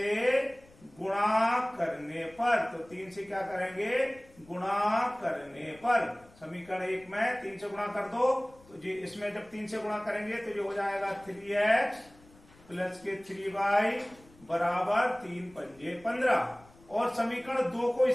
गुणा करने पर, तो 3 से क्या करेंगे? गुणा करने पर। समीकरण 1 में 3 से गुणा कर दो तो जी इसमें जब 3 से गुणा करेंगे तो ये हो जाएगा 3x प्लस के 3y बराबर 3 पंजे 15। और समीकरण 2 को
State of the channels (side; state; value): left; noise; rumble, 26 dB below the sound